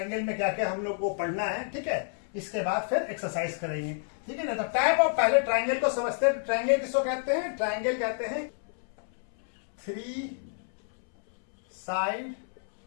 में क्या क्या हम लोग को पढ़ना है। ठीक है, इसके बाद फिर एक्सरसाइज करेंगे। ठीक है ना। तो टाइप ऑफ, पहले ट्रायंगल को समझते हैं। ट्रायंगल किसको कहते हैं? ट्रायंगल कहते हैं 3 साइड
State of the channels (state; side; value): silent; right; 58 dB below the other